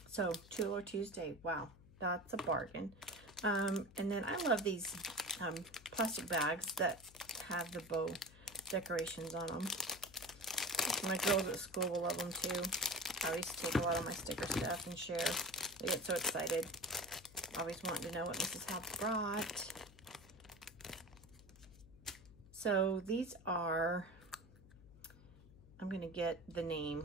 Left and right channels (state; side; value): noise; left; hum, 21 dB below the sound